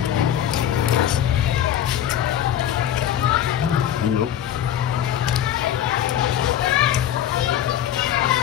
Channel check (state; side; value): quieter; right; 10.7 dB